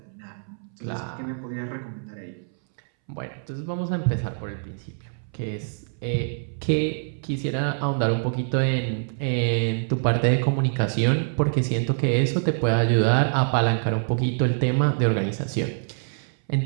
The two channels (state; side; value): silent; left; 62 dB below the other